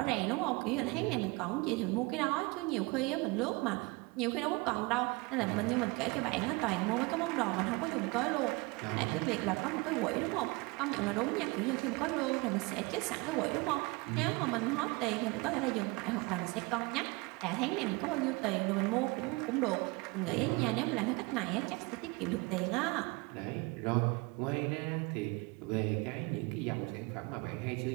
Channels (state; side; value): quieter; left; 25.9 dB